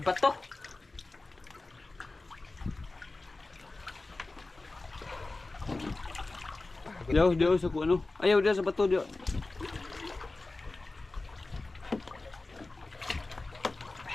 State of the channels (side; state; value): right; quieter; 3.2 dB